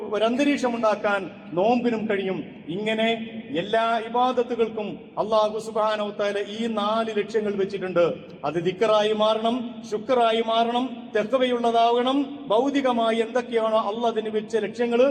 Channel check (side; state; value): both; identical; correlation 1.00